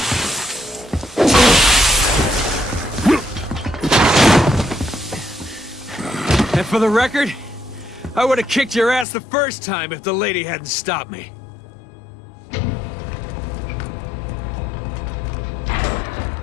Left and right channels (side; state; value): right; drops out; at 9.1 s